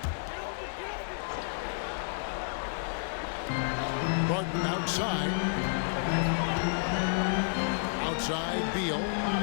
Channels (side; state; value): right; silent; digital silence